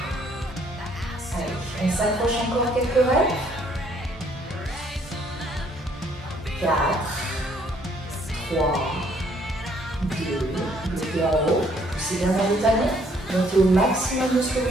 Allez, on s'accroche encore quelques reps. 4, 3, 2, bloquez en haut, poussez bien vers le talon, montez au maximum de ce que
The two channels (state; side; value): normal; both; correlation 0.65